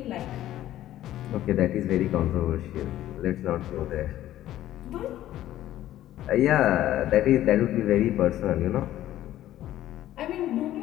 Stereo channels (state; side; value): quieter; right; 13.5 dB